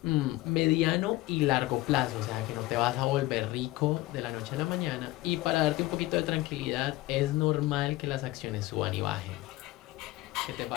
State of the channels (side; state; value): right; quieter; 18.5 dB